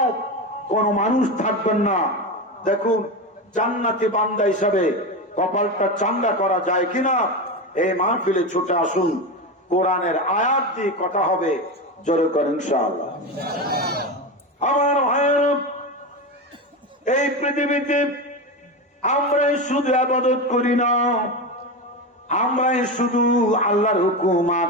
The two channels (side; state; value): both; normal; correlation 0.19